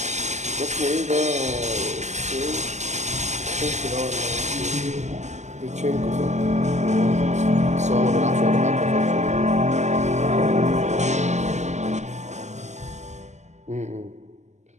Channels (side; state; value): left; late; 0.33 ms